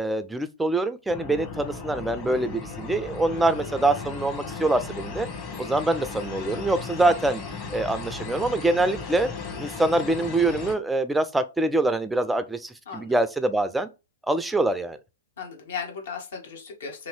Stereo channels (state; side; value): normal; both; correlation 0.73